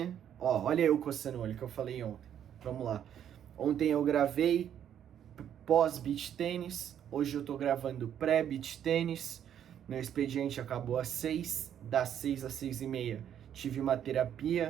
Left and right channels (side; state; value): left; quieter; 9.7 dB